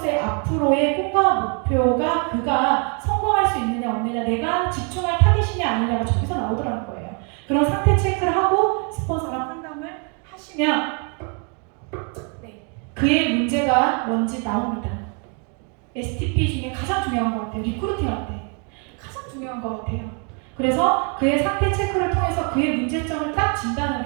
앞으로의 꿈과 목표가 그가 성공할 수 있느냐 없느냐 내가 집중할 타깃이냐 아니냐가 저기서 나오더라는 거예요. 그런 상태 체크를 하고 스폰서랑 상담을 하시면 그의 문제가 뭔지 나옵니다. STP 중에 가장 중요한 것 같아요. 리크루팅할 때 가장 중요한 것 같아요. 그래서 그의 상태 체크를 통해서 그의 문제점을 딱 진단을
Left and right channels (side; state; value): left; quieter; 37.8 dB